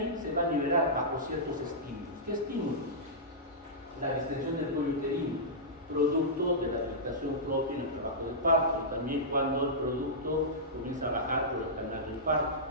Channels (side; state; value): both; normal; correlation -0.14